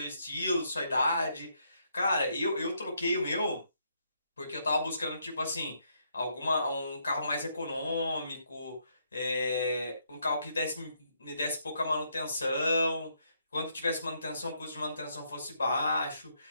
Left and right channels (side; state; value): both; inverted; correlation -0.75